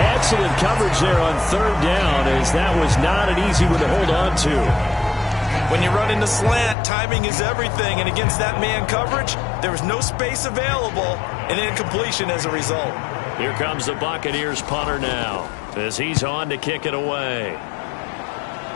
Excellent coverage there on 3rd down, as that was not an easy one to hold on to. When you run into slant, timing is everything, and against that man coverage, there was no space available, and incompletion as a result. Here comes the Buccaneers punter now, as he's on to kick it away.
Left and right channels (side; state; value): right; drops out; at 6.8 s